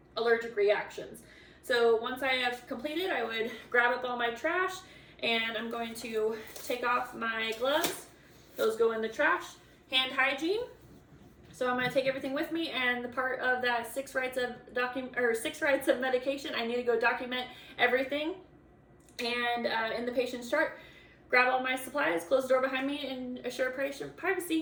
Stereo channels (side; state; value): both; identical; correlation 1.00